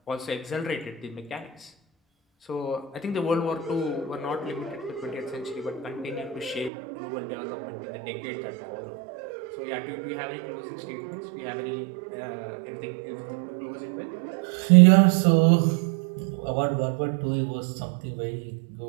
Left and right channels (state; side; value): drops out; left; at 6.7 s